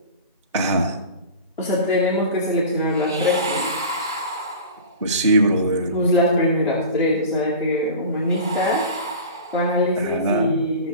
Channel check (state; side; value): inverted; both; correlation -0.35